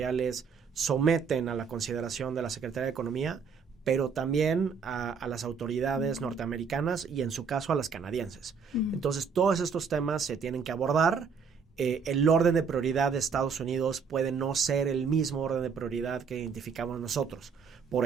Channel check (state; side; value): quieter; left; 5.9 dB